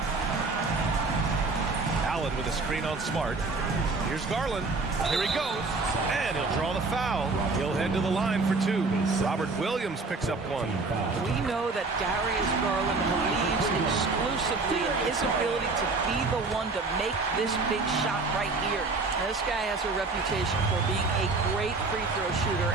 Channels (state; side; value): quieter; left; 3.8 dB